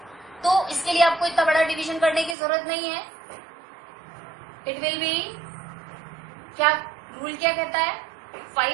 तो इसके लिए आपको इतना बड़ा डिवीजन करने की जरूरत नहीं है। इट विल बी, क्या रूल क्या कहता है,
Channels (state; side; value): drops out; left; at 2.4 s